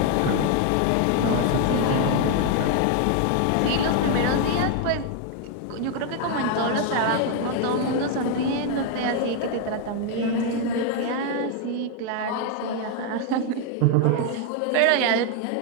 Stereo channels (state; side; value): different; both; correlation 0.01